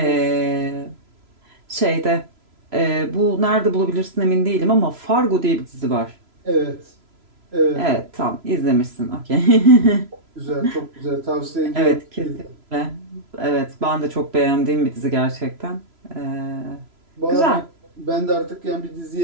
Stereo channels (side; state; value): left; late; 3.0 ms